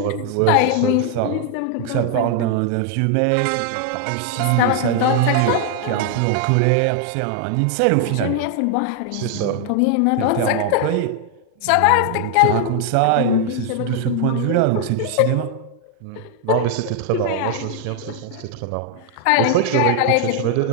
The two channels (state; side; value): different; both; correlation 0.00